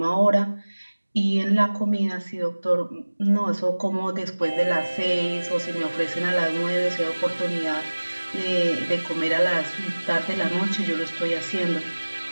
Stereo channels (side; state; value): both; inverted; correlation -1.00